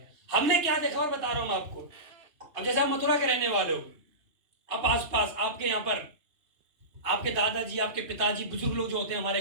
हमने क्या देखा और बता रहा हूं आपको। अब जैसे आप मथुरा के रहने वाले हो, अब आस पास आपके यहाँ पर आपके दादाजी, आपके पिताजी, बुजुर्ग लोग जो होते हैं हमारे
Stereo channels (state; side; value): late; left; 2.9 ms